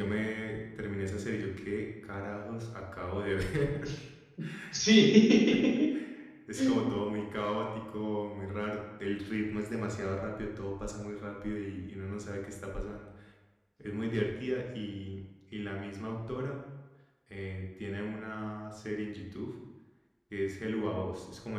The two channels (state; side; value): identical; both; correlation 1.00